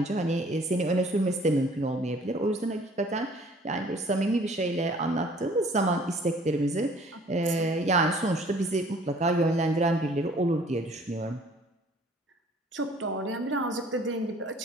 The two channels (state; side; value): normal; both; correlation 0.55